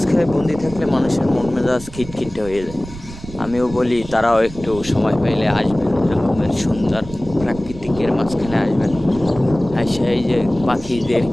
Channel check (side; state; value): right; noise; rumble, 14 dB below the sound